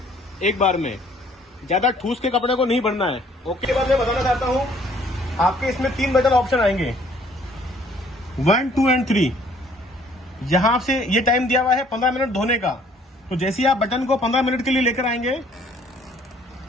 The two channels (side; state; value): both; normal; correlation 0.60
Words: एक बार में, ज्यादा ठूस के कपड़े को नहीं भरना है। ओके, बाद मैं बताना चाहता हूँ आपके इसमें 3 बटन ऑप्शन आएंगे, 1, 2 एंड 3। यहां से ये टाइम दिया हुआ है 15 मिनट धोने का। तो जैसे ही आप बटन को 15 मिनट के लिए लेकर आएंगे